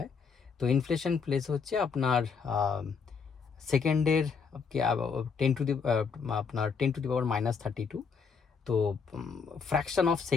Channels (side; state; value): right; quieter; 5.6 dB